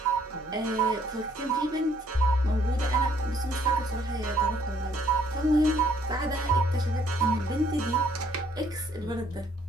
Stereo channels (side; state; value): both; normal; correlation 0.64